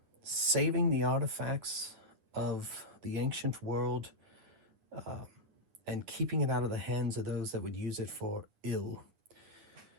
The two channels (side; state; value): left; late; 9.9 ms